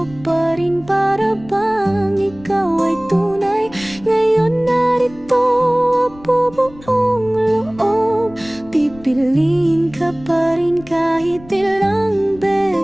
pa rin para bang ikaw ay tunay. Ngayon narito buong loob, pipiliin ka pa rin kahit ilang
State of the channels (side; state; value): left; noise; rumble, 21 dB below the sound